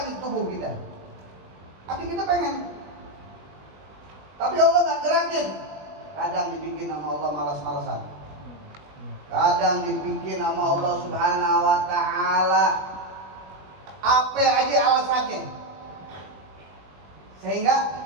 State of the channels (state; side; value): late; left; 20 ms